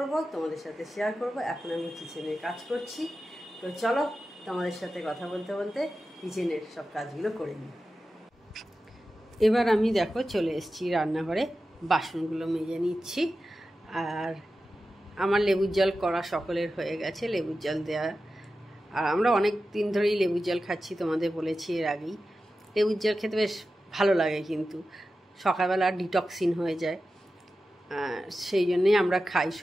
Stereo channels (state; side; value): normal; both; correlation 0.93